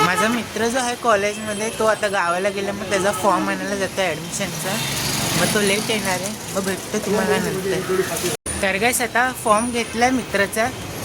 माझा मित्र जो आहे कॉलेजमध्ये तो आता गावाला गेला. मग त्याचा फॉर्म आणायला जातो आहे ॲडमिशनचा. मग तो लेट येणार आहे. मग भेटतो तुम्हाला नंतर. तर गाईस आता फॉर्म घेतला आहे मित्राचा.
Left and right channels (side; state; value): both; identical; correlation 1.00